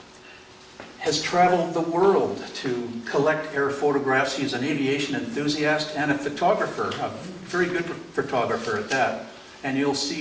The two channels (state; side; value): identical; both; correlation 1.00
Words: has traveled the world to collect air photographs. He's an aviation enthusiast and a photographer, a very good photographer at that. And you'll